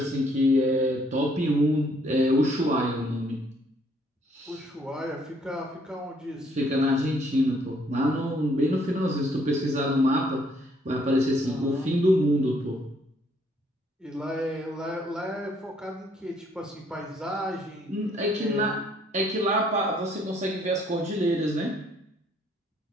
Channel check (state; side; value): normal; both; correlation 0.66